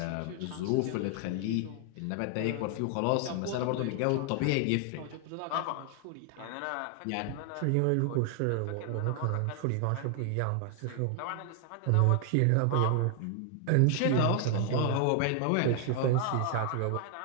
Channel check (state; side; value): different; both; correlation 0.00